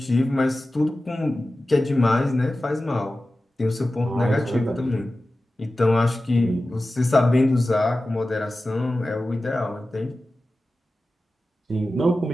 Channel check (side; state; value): both; normal; correlation 0.95